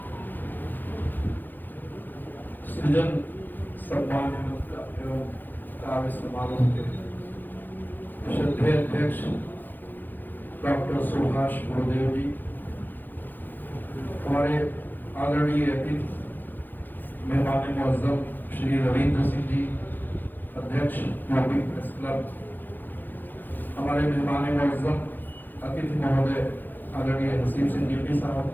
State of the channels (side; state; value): right; late; 0.088 ms